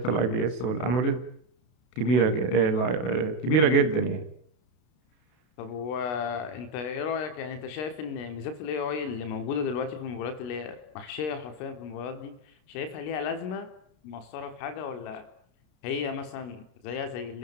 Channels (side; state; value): right; late; 32 ms